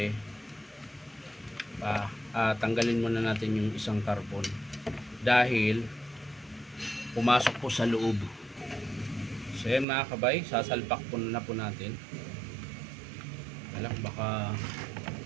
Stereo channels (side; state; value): left; drops out; at 9.9 s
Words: tanggalin muna natin yung isang carbon dahil pumasok po sa loob. So yan mga kabay, sasalpak po na po natin. Baka